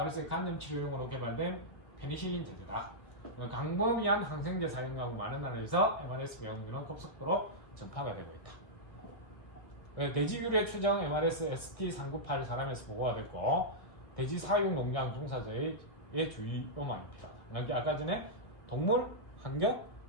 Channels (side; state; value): right; late; 1.6 ms